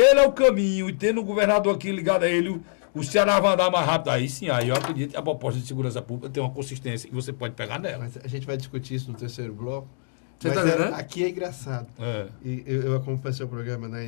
é o caminho, e tendo um governador aqui ligado a ele, o Ceará vai andar mais rápido. Aí sim, aí eu acredito que a proposta de segurança pública tem uma consistência e você pode pegar nela. Mas a gente vai discutir isso no terceiro bloco. Você está entendendo? Aqui é engraçado. E eu acompanho seu programa na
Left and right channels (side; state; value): right; silent; digital silence